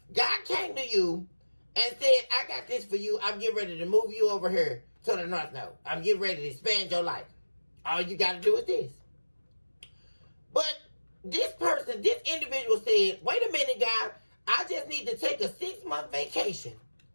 God came to you and said, I got this for you. I'm getting ready to move you over here to the north node. I'm getting ready to expand your life. All you got to do is this. But this person, this individual said, wait a minute, God. I just need to take a 6-month vacation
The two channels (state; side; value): inverted; both; correlation -1.00